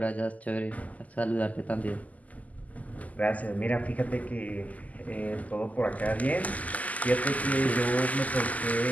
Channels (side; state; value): right; late; 0.075 ms